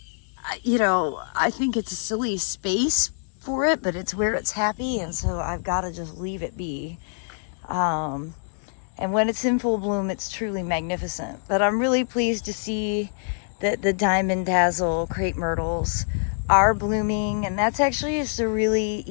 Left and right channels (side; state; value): right; silent; digital silence